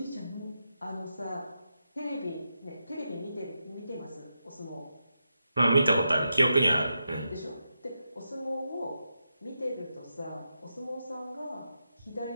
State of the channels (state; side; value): inverted; both; correlation -0.86